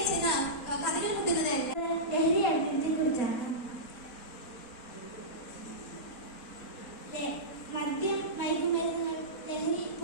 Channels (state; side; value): late; right; 4.2 ms